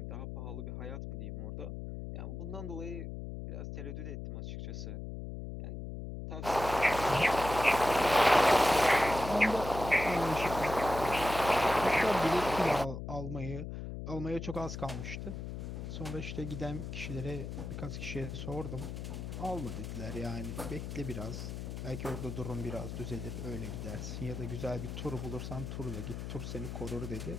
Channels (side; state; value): left; noise; hum, 7 dB below the sound